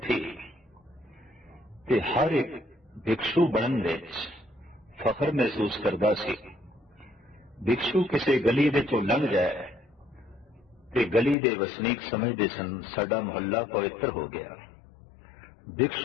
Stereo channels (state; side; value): drops out; right; at 11.4 s